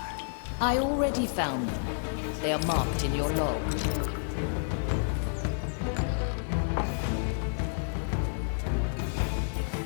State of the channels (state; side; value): silent; right; digital silence